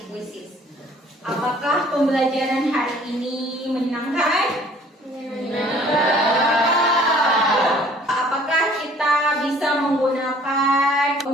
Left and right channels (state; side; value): normal; both; correlation 0.54